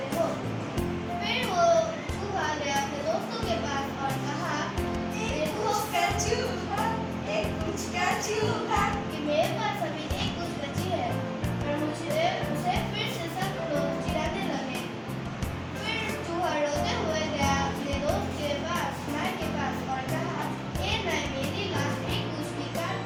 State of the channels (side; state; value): both; identical; correlation 1.00